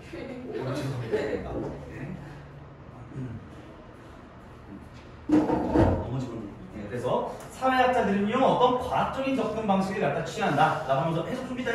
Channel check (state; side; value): identical; both; correlation 1.00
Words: 그래서 사회학자들은요, 어떤 과학적인 접근 방식을 갖다 취한다 라고 하면서 해석 좀 이따